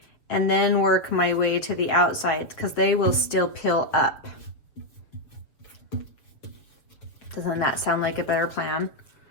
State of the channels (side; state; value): right; late; 6.9 ms